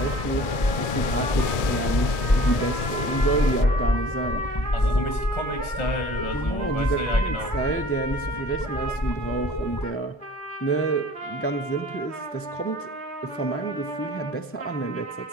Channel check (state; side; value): late; right; 1.7 ms